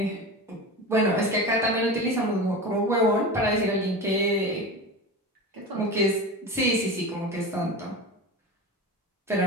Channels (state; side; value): normal; both; correlation 0.28